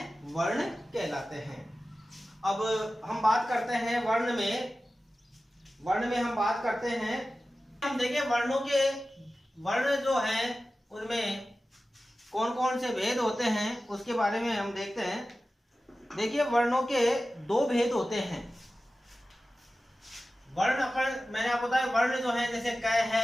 वर्ण कहलाते हैं। अब हम बात करते हैं वर्ण में हम बात करते हैं, हम देखें वर्णों के, वर्ण जो हैं उनमें कौन कौन से भेद होते हैं उसके बारे में हम देखते हैं। देखिए वर्णों के दो भेद होते हैं। वर्ण मैंने आपको बताया, वर्ण जो है जैसे क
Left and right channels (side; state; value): both; normal; correlation 0.95